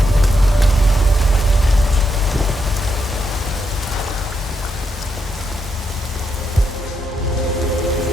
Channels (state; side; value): normal; both; correlation 0.81